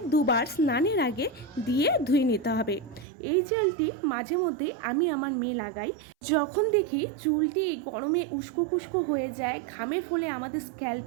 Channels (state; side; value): drops out; left; at 3.1 s